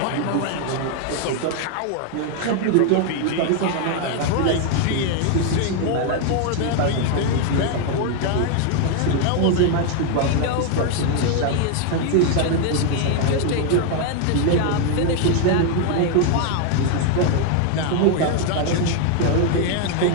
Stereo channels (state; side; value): different; both; correlation 0.01